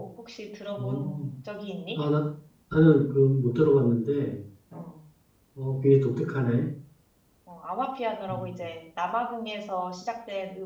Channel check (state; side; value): identical; both; correlation 1.00